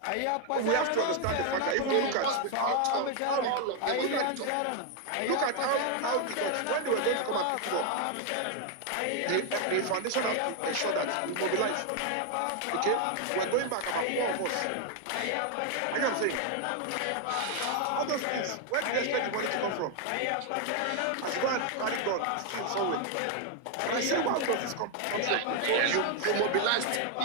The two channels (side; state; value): both; different; correlation 0.01